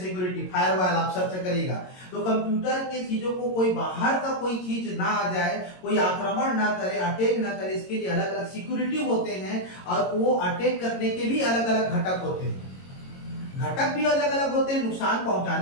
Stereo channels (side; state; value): right; late; 22 ms